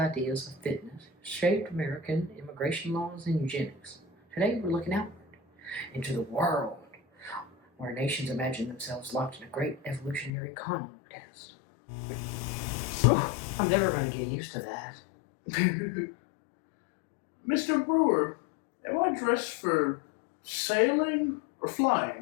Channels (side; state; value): right; drops out; at 10.3 s